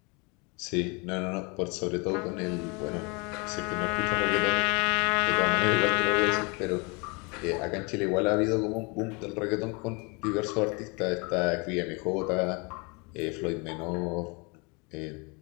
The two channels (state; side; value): quieter; right; 30.3 dB